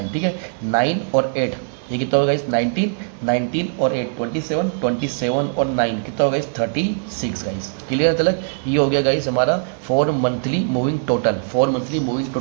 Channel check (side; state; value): left; silent; 65 dB below the other